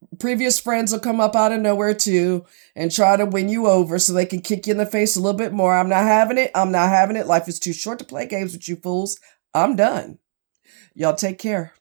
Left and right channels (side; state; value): left; silent; digital silence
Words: Previous friends will come up out of nowhere too and try to win you over so they can kick you in the face a little bit more. I'm not having it. I'm not having it. Life is too short to play games with you fools. I'm done. Y'all take care.